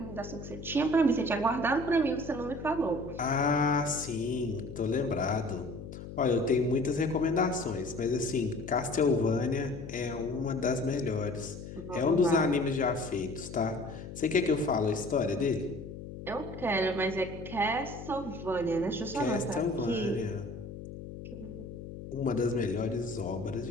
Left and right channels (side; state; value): left; noise; hum, 11 dB below the sound